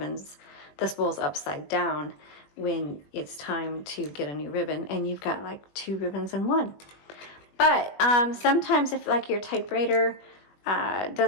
spools upside down when it's time to get a new ribbon, and you've got like 2 ribbons in one. But sometimes if like your typewriter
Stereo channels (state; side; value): late; right; 21 ms